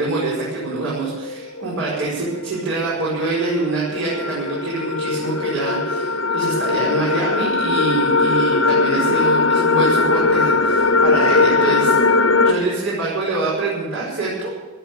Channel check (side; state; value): both; normal; correlation -0.04